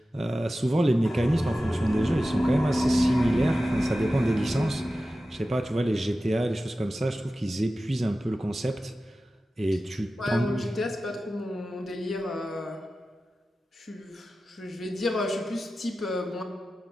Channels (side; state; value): both; normal; correlation 0.94